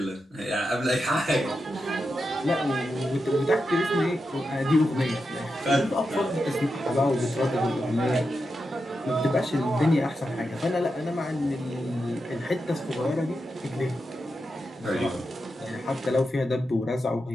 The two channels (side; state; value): both; normal; correlation 0.88